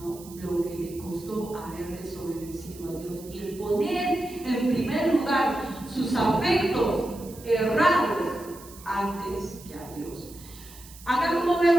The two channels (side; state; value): right; noise; hiss, 19 dB below the sound